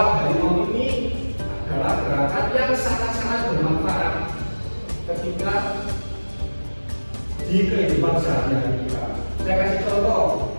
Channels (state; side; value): inverted; both; correlation -1.00